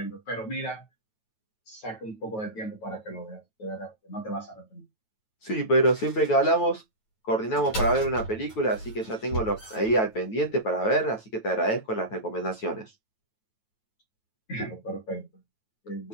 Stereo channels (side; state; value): right; late; 9.2 ms